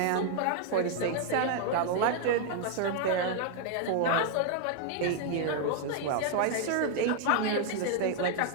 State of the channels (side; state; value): both; different; correlation 0.00